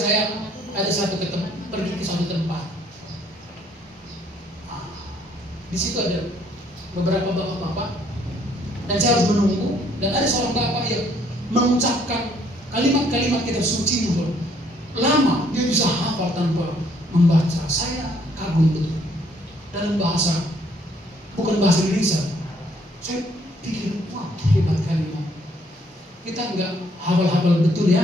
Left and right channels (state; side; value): normal; both; correlation 0.65